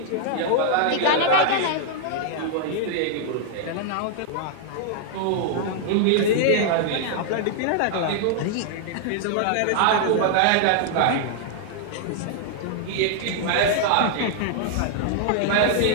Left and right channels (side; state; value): both; different; correlation -0.01